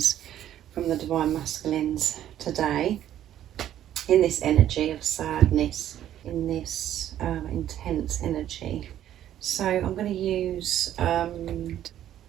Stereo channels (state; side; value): quieter; left; 11.6 dB